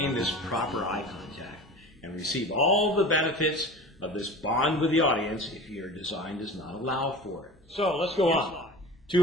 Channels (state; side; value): normal; both; correlation 0.36